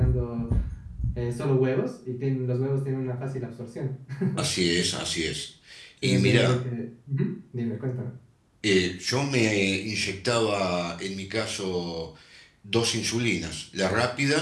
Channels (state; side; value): identical; both; correlation 1.00